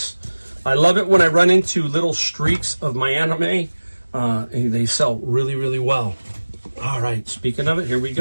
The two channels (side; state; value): both; inverted; correlation -1.00